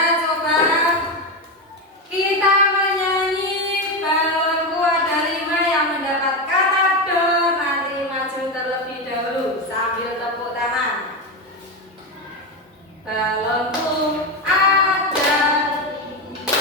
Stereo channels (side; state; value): both; normal; correlation 0.14